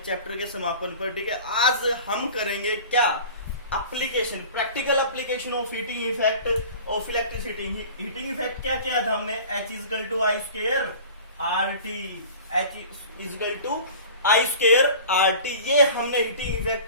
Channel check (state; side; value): inverted; both; correlation -0.41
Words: चैप्टर के समापन पर। ठीक है, आज हम करेंगे क्या, application, practical application of heating effect of electricity. Heating effect क्या किया था हमने, H is equal to I square R T, H is equal to I square R T, ये हमने हीटिंग